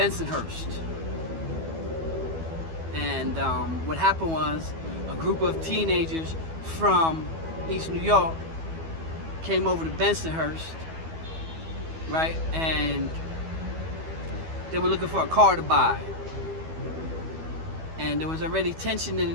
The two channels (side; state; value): left; late; 12 ms